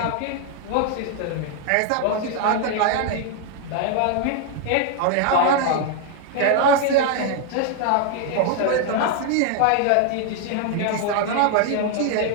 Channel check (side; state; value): both; different; correlation 0.00